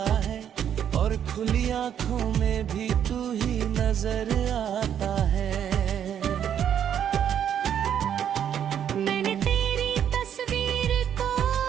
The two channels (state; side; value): quieter; left; 9.2 dB